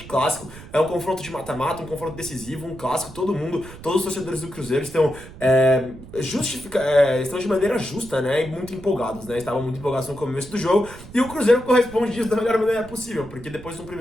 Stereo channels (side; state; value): right; noise; rumble, 16 dB below the sound